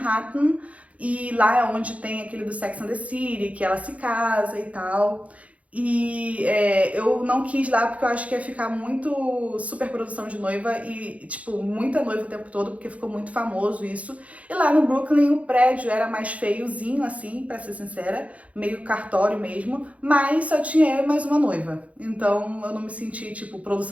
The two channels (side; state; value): left; late; 0.066 ms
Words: e lá é onde tem aquele do Sex and the City, que ela se casa e tal. E eu não quis lá porque eu acho que ia ficar muito super produção de noiva e, tipo, muita noiva o tempo todo, porque ficou muito famoso isso. E lá no Brooklyn o prédio era mais feiozinho, assim, pra ser sincera, meio cartório mesmo, mas só tinha eu e mais uma noiva. Então eu não me senti, tipo,